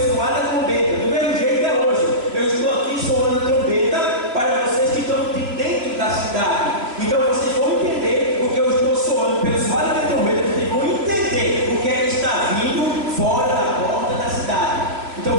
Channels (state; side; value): late; left; 2.9 ms